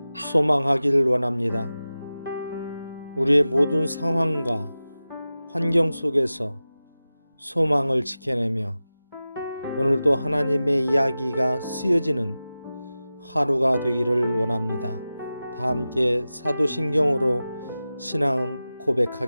소망하기를 원합니다. 우리의 모든 상황과 환경 속에서 소망을 지켜내며 오늘도 하나님의 이야기가 쓰여지는 하루가 되기를 원합니다. 다 함께 사도신경으로 신앙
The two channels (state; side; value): inverted; both; correlation -0.95